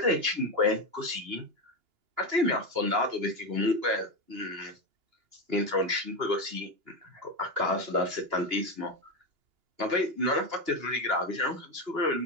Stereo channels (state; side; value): late; left; 2.9 ms